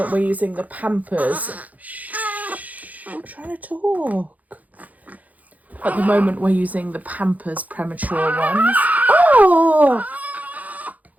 we're using the Pampers. Shh, I'm trying to talk. At the moment, we're using the Pampers premature ones. Oh!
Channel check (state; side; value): late; left; 0.077 ms